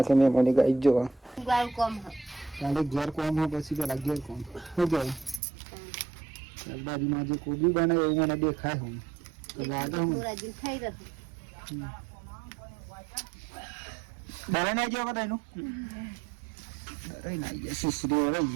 મેં મને ગાઈ જો ઘેર કોમ હોય પછી પેલા ઘેર કોમ શું કહેવાય શાકભાજીમાં જે કોબી બને એવું મને દેખાય હું ડરે ના ગયો બધા એનું ડરે ના ગયા સુસરી રહી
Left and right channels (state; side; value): drops out; left; at 5.4 s